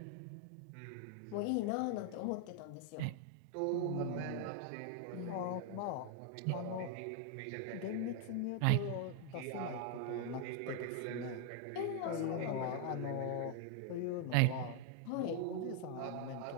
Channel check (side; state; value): both; different; correlation 0.00